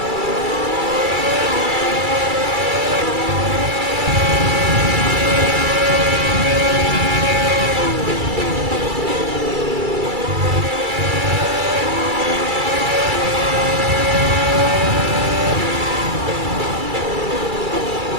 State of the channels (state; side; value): late; left; 2.3 ms